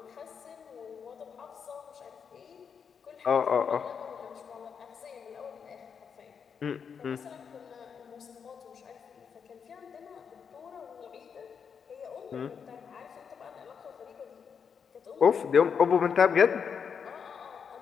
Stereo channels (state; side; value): quieter; right; 6.7 dB